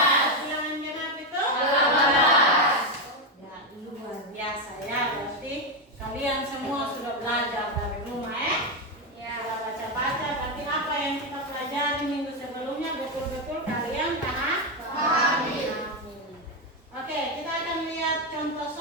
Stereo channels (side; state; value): both; normal; correlation 0.06